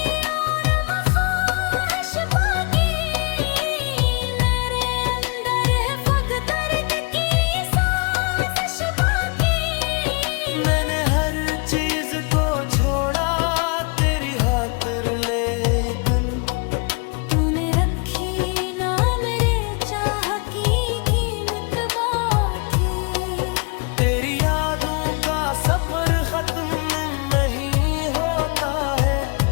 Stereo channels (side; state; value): right; quieter; 34.1 dB